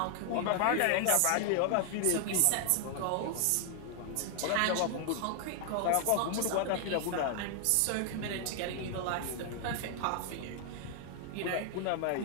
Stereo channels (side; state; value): both; different; correlation 0.00